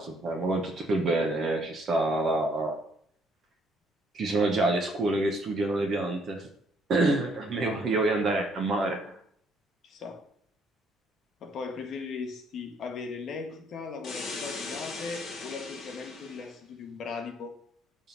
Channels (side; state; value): both; normal; correlation 0.67